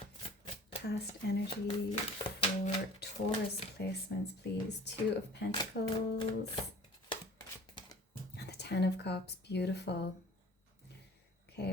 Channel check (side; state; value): both; normal; correlation 0.47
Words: Past energy for Taurus placements, please. Two of Pentacles and the Ten of Cups. Beautiful.